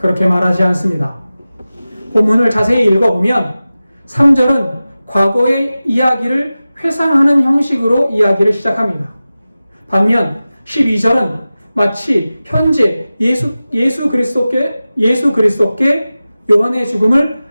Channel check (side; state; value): both; inverted; correlation -0.96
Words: 말하지 않습니다. 본문을 자세히 읽어보면 3절은 과거의 이야기를 회상하는 형식으로 이야기를 시작합니다. 반면 12절은 마치 현재 예수 그리스도께 요한의 죽음을